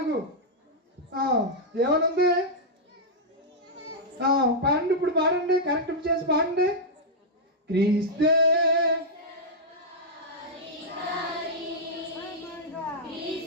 ఏమనుంది? పాడండి, ఇప్పుడు పాడండి, కరెక్ట్ చేసి పాడండి. క్రీస్తే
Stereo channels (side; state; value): both; normal; correlation -0.05